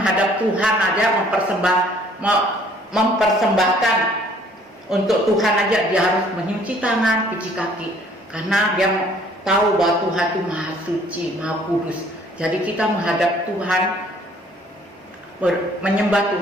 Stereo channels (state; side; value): normal; both; correlation 0.58